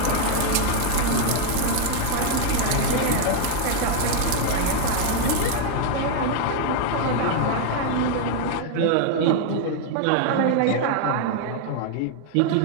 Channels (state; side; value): different; both; correlation 0.00